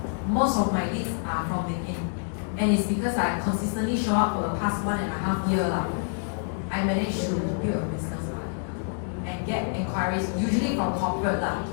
Most of my leads are from LinkedIn. And it's because I consistently show up for the past 1.5 years now. I managed to build a business and get inquiries, usually from corporate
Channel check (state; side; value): silent; right; 60 dB below the other